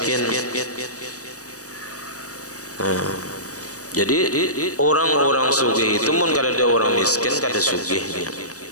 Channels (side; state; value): right; late; 0.66 ms